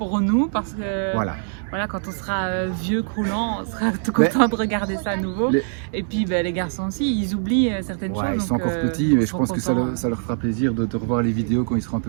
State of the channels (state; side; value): silent; left; digital silence